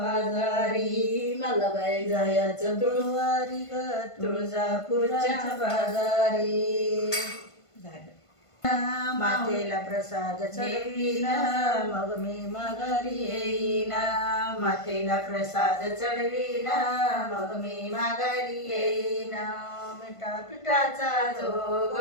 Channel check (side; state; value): right; late; 1.5 ms